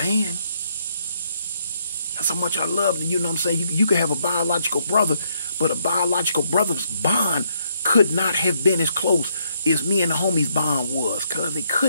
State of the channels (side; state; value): both; inverted; correlation -0.72